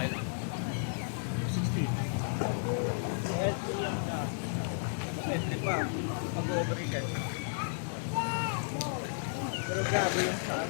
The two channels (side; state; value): right; silent; 56 dB below the other